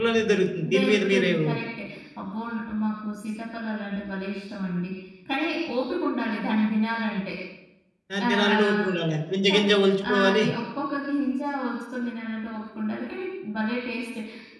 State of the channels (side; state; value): both; identical; correlation 1.00